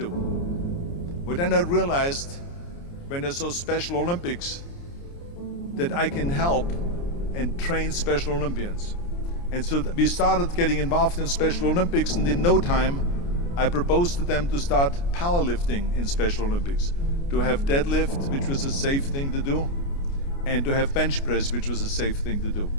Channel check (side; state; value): right; late; 29 ms